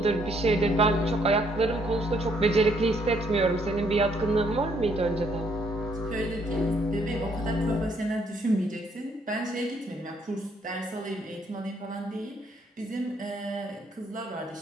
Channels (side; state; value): both; normal; correlation 0.68